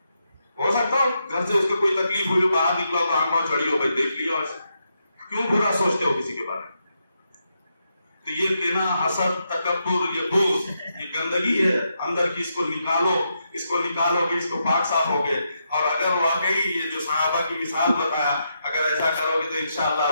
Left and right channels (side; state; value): both; inverted; correlation -0.82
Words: ہو سکتا ہو گھر سے اس کو کوئی تکلیف ہوئی، باہر نکلا تو آنکھوں چڑھی ہو، بھائی دیکھ لیا ویسے، کیوں برا سوچتے ہو کسی کے بارے میں؟ تو یہ کینہ، حسد، تکبر، یہ بغض، یہ گندگی ہے اندر کی، اس کو نکالو. اس کو نکالو گے، اس کو پاک صاف ہوگے. اور اگر واقعی یہ جو صحابہ کی مثال بتایا، اگر ایسا کرو گے تو